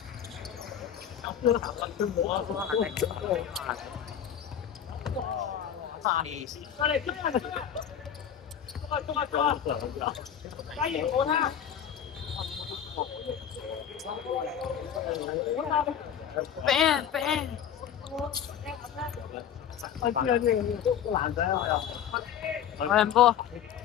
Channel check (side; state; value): right; quieter; 9.1 dB